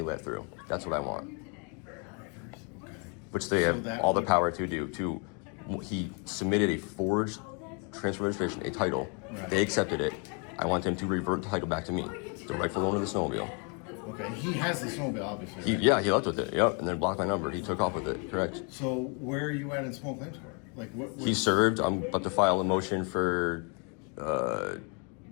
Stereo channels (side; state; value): right; quieter; 35.9 dB